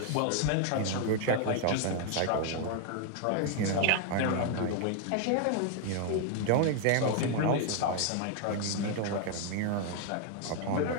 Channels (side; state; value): both; different; correlation 0.00